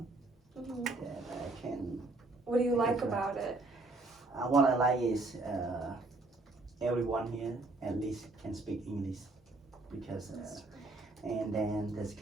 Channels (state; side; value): quieter; left; 3.1 dB